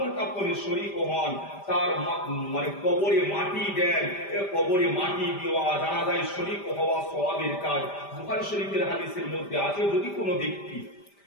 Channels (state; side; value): late; right; 5.0 ms